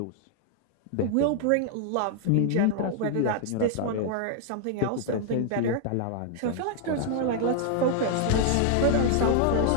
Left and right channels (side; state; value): both; different; correlation 0.00